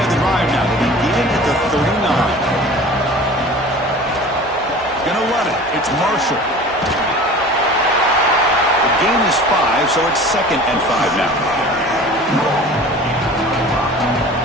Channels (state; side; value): normal; both; correlation 0.41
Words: of the drive now. They begin at the 39. Gonna run it. It's Marshall. The gain is 5, so it's 2nd and 5 now.